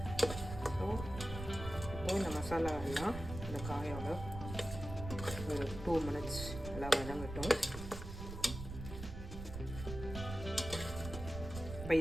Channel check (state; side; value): noise; right; rumble, 8 dB below the sound